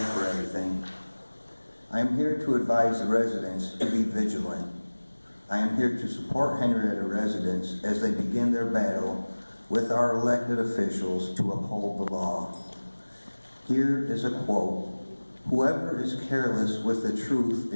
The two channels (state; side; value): inverted; both; correlation -1.00